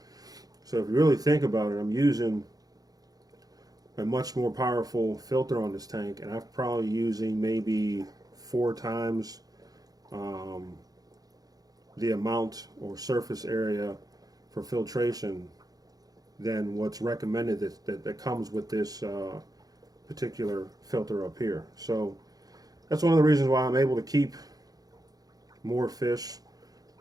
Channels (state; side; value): late; left; 0.18 ms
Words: So if you really think about it, I'm using a much more powerful filter on this tank, and I'm probably using maybe 4 times the amount or surface area for filtration than what's recommended that comes with this particular filter up here. So that's one of the reasons why I'm able to keep more fish